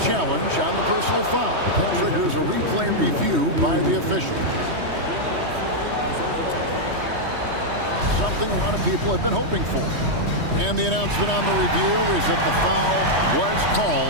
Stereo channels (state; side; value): late; left; 3.2 ms